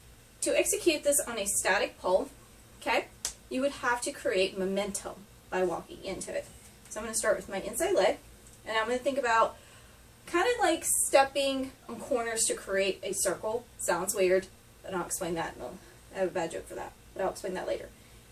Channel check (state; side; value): identical; both; correlation 1.00